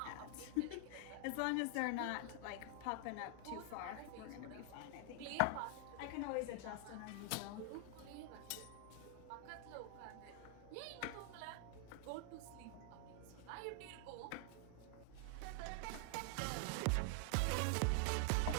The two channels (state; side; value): different; both; correlation 0.00